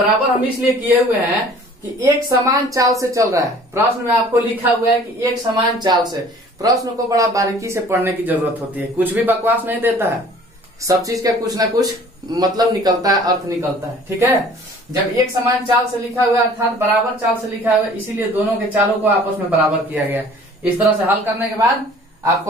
हम इसलिए किए हुए हैं कि एक समान चाल से चल रहा है। प्रश्न में आपको लिखा हुआ है कि एक समान चाल से। प्रश्न को बड़ा बारीकी से पढ़ने की जरूरत होती है, कुछ भी बकवास नहीं देता है, सब चीज का कुछ ना कुछ मतलब निकलता है, अर्थ निकलता है। ठीक है, जब एक समान चाल से लिखा हुआ है अर्थात बराबर चाल से लिखा हुआ है, इसीलिए दोनों के चालों को आपस में बराबर किया गया। इस तरह से हल करने के बाद आपको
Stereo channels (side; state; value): both; normal; correlation 0.50